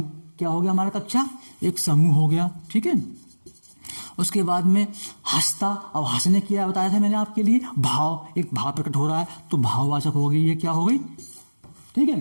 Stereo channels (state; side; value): inverted; both; correlation -1.00